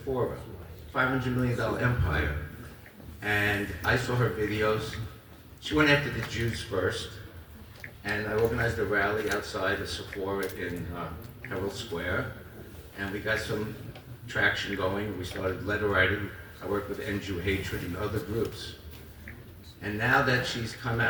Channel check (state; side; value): identical; both; correlation 1.00